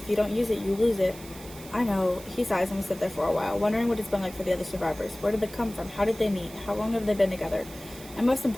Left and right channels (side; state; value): right; noise; hiss, 17 dB below the sound